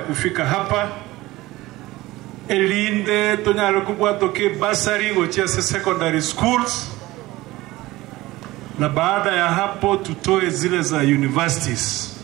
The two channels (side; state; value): left; quieter; 18.6 dB